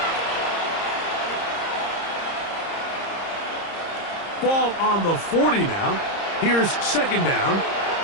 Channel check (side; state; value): right; late; 30 ms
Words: 6. Ball on the 40 now. Here's second down